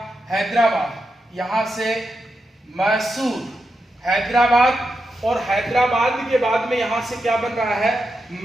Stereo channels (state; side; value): normal; both; correlation 0.87